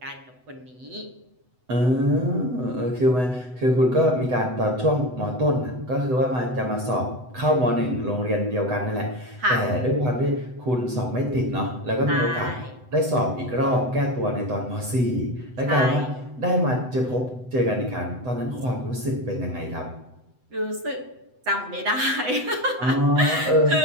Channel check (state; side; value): late; left; 8.0 ms